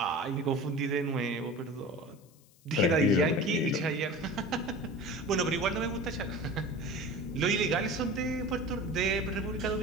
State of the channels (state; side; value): noise; left; hiss, 29 dB below the sound